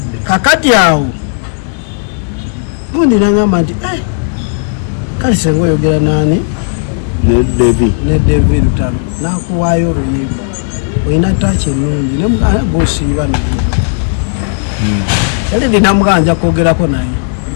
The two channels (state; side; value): silent; right; digital silence